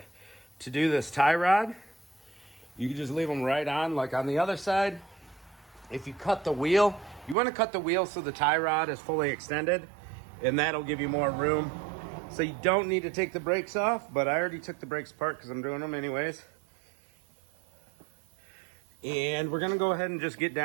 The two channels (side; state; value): left; drops out; at 7.4 s